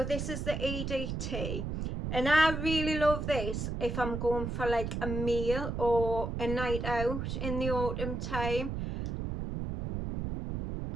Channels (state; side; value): noise; right; rumble, 3 dB below the sound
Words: this is the EDT. And I really love this if I'm going for like a meal or a night out in the autumn time.